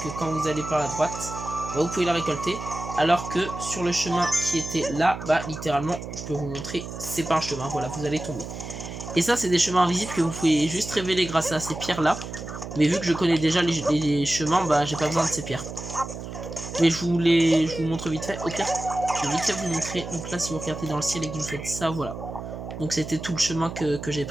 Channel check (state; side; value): noise; right; hum, 9 dB below the sound